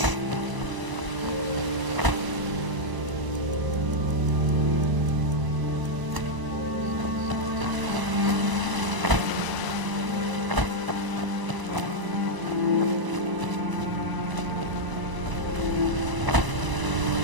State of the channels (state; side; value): late; left; 1.0 ms